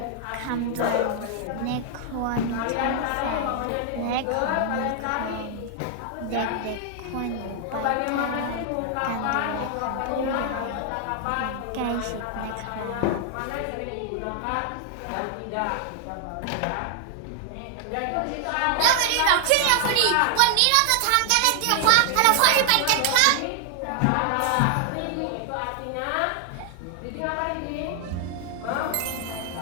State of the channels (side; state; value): both; different; correlation 0.00